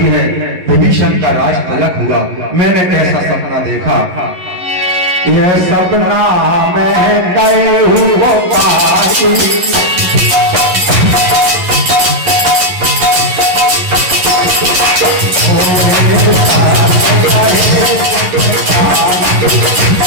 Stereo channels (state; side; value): late; left; 11 ms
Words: है, विभीषण का राज तलक हुआ। मैंने कैसा सपना देखा? यह सपना मैं गए हुआ पाई,